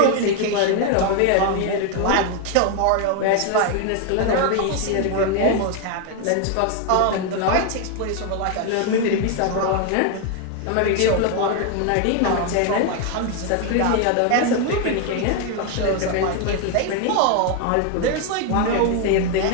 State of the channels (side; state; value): both; different; correlation 0.01